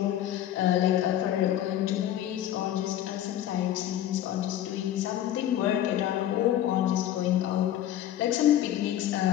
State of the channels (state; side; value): quieter; right; 11.9 dB